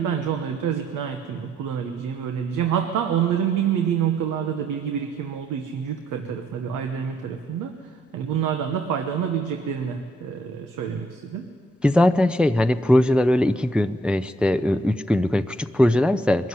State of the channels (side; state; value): both; normal; correlation 0.71